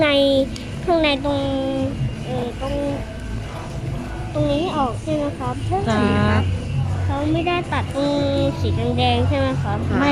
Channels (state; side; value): identical; both; correlation 1.00